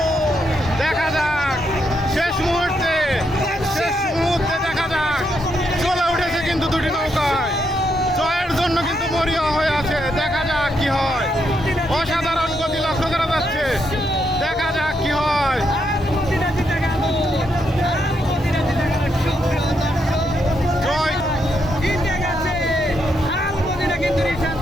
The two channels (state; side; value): normal; both; correlation 0.79